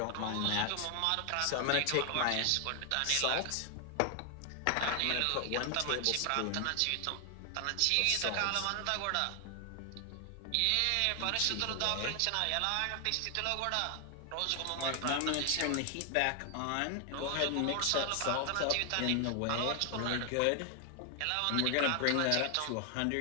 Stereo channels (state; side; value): different; both; correlation 0.00